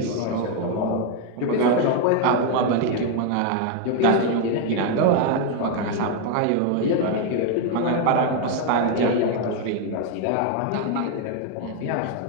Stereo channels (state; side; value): different; both; correlation 0.01